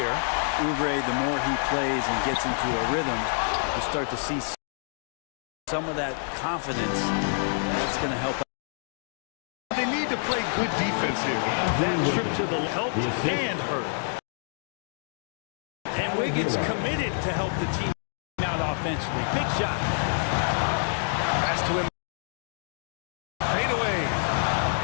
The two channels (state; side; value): silent; right; digital silence